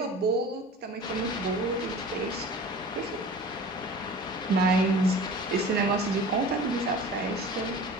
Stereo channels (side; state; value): both; normal; correlation 0.39